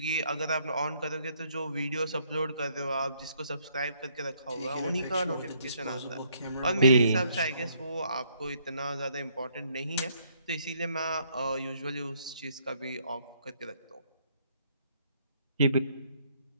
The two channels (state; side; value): inverted; both; correlation -0.69